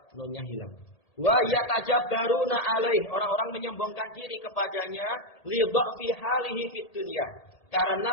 nunnya hilang. Wa yatajabbaruna alaih, orang-orang menyombongkan diri kepadanya, li dha'fi halihi fid dunya,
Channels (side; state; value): right; late; 1.8 ms